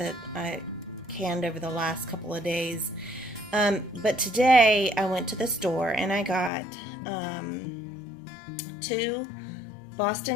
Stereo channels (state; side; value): drops out; right; at 6.5 s